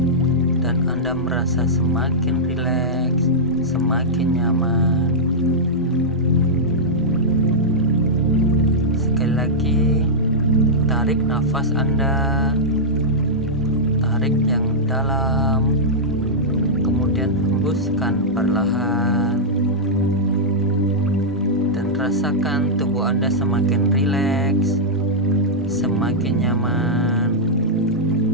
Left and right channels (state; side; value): normal; both; correlation -0.09